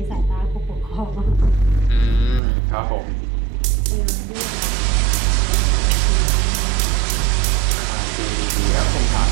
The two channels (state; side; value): drops out; left; at 2.4 s